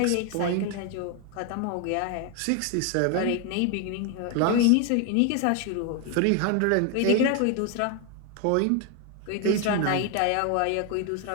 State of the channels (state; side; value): different; both; correlation 0.01